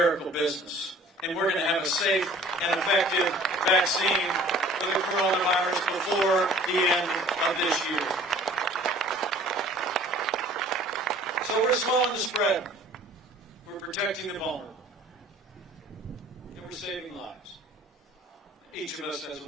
business. And we're going to have a safe and effective vaccine for the coronavirus before the end of this year. So we're slowing the spread. We're protecting the vulnerable. And we're saving lives. Each of us has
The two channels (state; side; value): normal; both; correlation 0.50